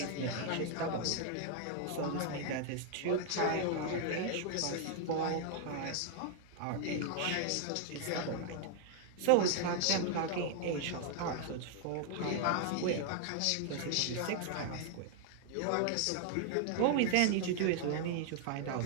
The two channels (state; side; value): different; both; correlation 0.00